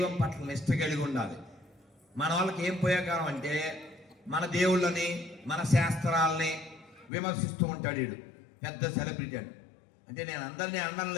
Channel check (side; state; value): right; drops out; at 7.1 s